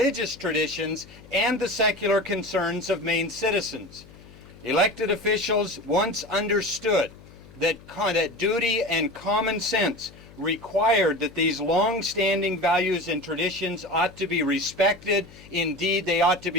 traditions and the secular concerns of Maine citizens. Elected officials once understood that duty and common sense required that these long-standing values and traditions ought to be respected. Indeed, they ought to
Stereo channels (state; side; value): noise; left; hum, 21 dB below the sound